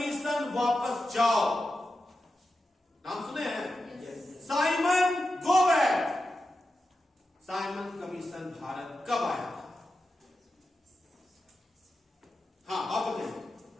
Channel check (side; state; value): both; normal; correlation 0.90